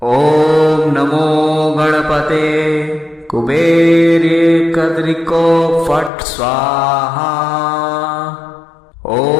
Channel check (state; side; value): drops out; right; at 6.1 s